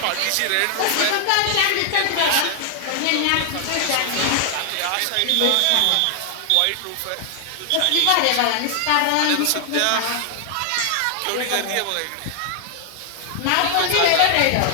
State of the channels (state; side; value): different; both; correlation 0.00